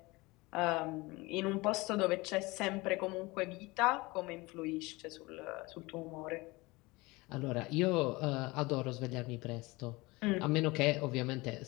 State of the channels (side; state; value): right; quieter; 23.0 dB